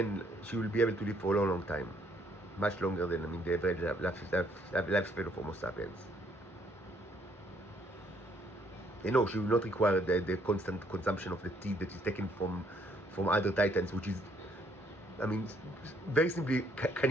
will be able to live for a long, long time, much longer than the average lifespan of Homo sapiens. She will not require the constant consumption of the teeth that is taken from other titans, which is, very simply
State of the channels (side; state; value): both; normal; correlation 0.67